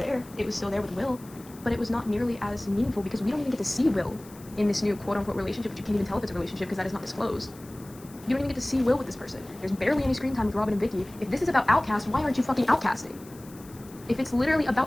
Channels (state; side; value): noise; left; hiss, 22 dB below the sound